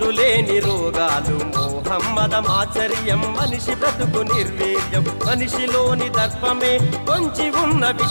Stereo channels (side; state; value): both; inverted; correlation -1.00